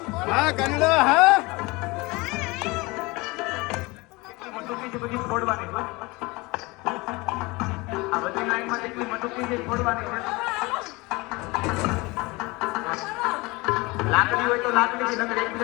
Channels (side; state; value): right; quieter; 24.0 dB